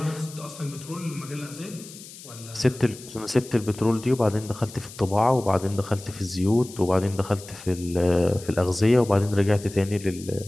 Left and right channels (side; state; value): left; noise; hiss, 17 dB below the sound